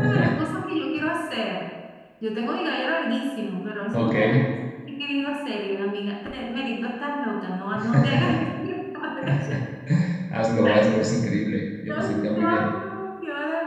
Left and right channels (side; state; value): both; identical; correlation 1.00